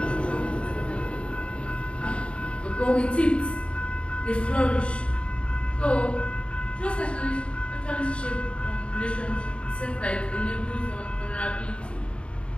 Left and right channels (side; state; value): right; late; 0.058 ms